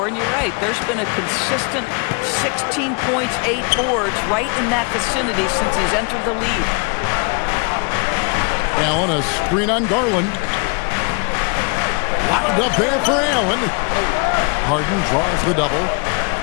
And you're right, there's been a consistent 16 points, 8 boards right in that vicinity since he's entered the league. Allen, a screen on Garland. Locked up there for Allen. Harden draws the double.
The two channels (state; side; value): quieter; right; 34.0 dB